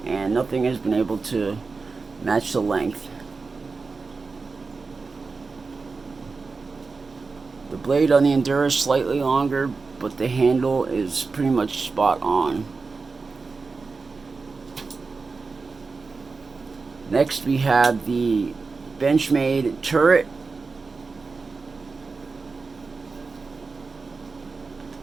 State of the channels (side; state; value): left; quieter; 4.3 dB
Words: and nothing has been able to match the length. The blade on the Endura is slightly longer, but the handle is pretty much spot on. Next, we have the Benchmade turret.